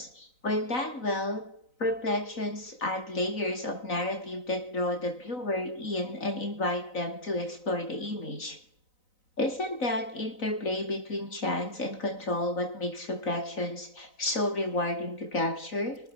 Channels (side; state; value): right; late; 4.0 ms